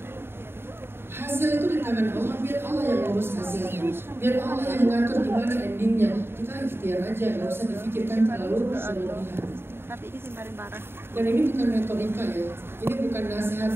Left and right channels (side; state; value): left; late; 0.11 ms